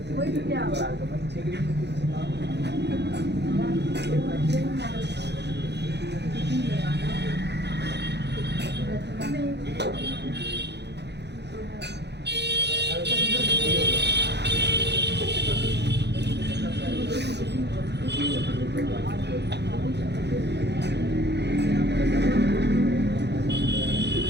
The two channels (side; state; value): left; late; 0.50 ms